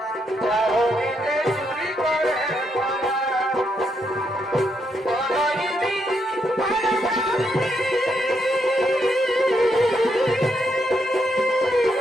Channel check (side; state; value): both; normal; correlation 0.78